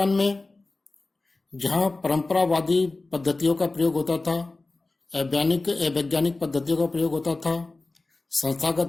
में जहां परंपरावादी पद्धतियों का प्रयोग होता था, वैज्ञानिक पद्धतियों का प्रयोग होता था,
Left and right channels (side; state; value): right; quieter; 3.3 dB